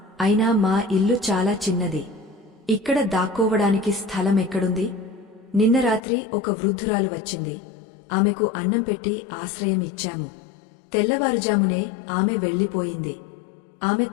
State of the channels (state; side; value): drops out; right; at 6.0 s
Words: అయినా మా ఇల్లు చాలా చిన్నది. ఇక్కడ దాక్కోవడానికి స్థలం ఎక్కడుంది? నిన్న రాత్రి ఒక వృద్ధురాలు వచ్చింది. ఆమెకు అన్నం పెట్టి ఆశ్రయం ఇచ్చాము. తెల్లవారుజామునే ఆమె వెళ్లిపోయింది. ఆమె